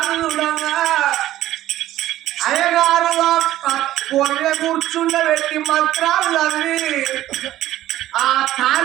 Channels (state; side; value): quieter; left; 14.1 dB